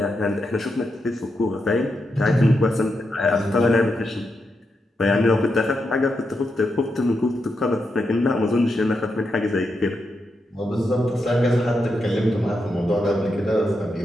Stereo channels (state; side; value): normal; both; correlation 0.85